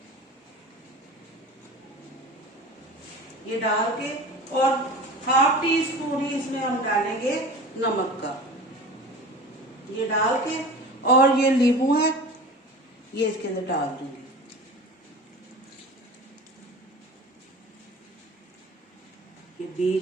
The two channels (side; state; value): both; normal; correlation 0.36